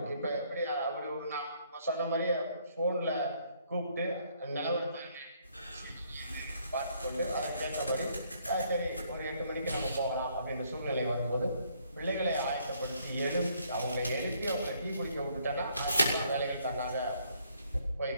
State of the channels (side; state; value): both; inverted; correlation -0.68